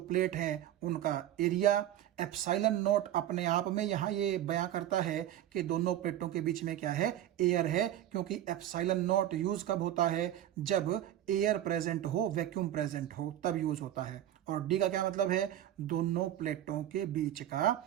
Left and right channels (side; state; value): left; quieter; 12.2 dB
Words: है उनका एरिया। ε0 अपने आप में यहां ये बयां करता है कि दोनों प्लेटों के बीच में क्या है, एयर है, क्योंकि ε0 यूज कब होता है, जब एयर प्रेजेंट हो, वैक्यूम प्रेजेंट हो, तब यूज होता है। और D का क्या मतलब है, दोनों प्लेटों के बीच का